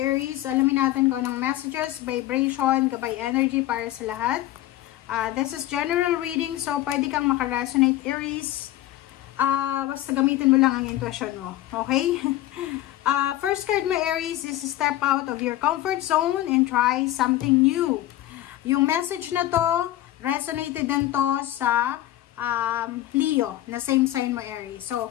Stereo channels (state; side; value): quieter; right; 14.7 dB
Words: alamin natin kung anong messages, vibration, gabay energy para sa lahat. This is general reading, so pwede kang makaresonate Aries. Basta gamitin mo lang ang intuition mo. Okay? First card mo Aries is step out of your comfort zone and try something new. Yung message na to, resonated din to sa Leo, na same sign mo Aries. So,